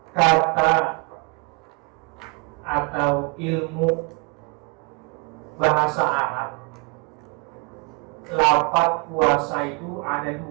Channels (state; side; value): quieter; left; 34.4 dB